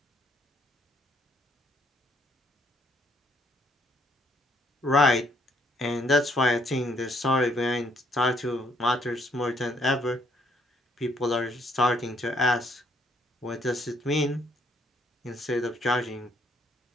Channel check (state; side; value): normal; both; correlation 0.68